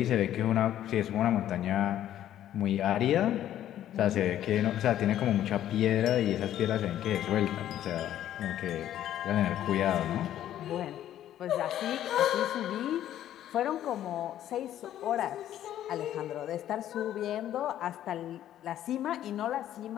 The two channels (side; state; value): right; quieter; 11.8 dB